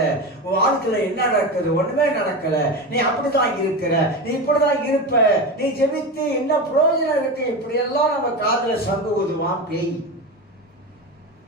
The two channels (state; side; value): normal; both; correlation 0.22